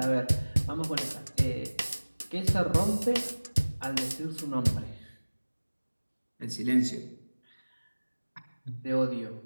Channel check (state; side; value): inverted; both; correlation -1.00